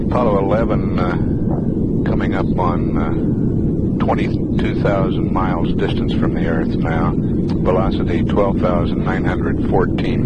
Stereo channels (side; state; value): both; identical; correlation 1.00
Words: Apollo 11 coming up on 22,000 miles distance from the Earth now. Velocity 12,914